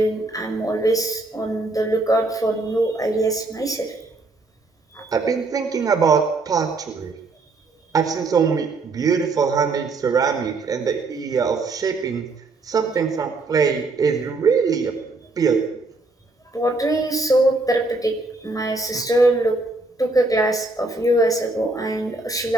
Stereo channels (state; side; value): quieter; left; 3.3 dB